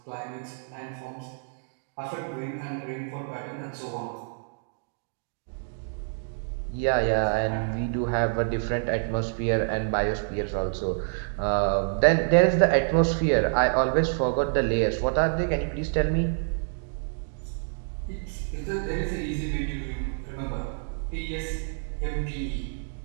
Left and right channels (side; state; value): left; silent; digital silence